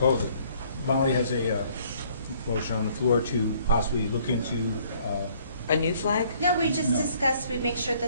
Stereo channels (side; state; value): both; inverted; correlation -0.61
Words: it. Molly has a motion on the floor to possibly look into, A new flag? No, we just No. discussed, we make sure